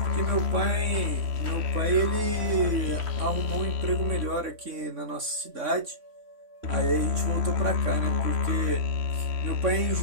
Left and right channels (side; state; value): left; late; 3.6 ms